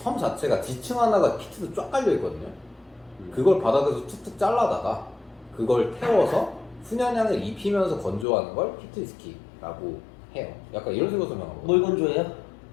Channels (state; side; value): drops out; right; at 8.2 s